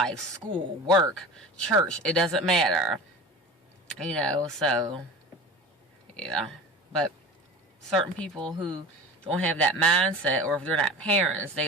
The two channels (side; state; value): both; normal; correlation 0.35